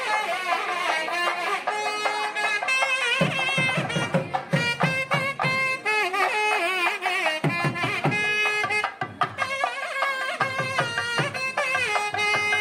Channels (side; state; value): both; identical; correlation 1.00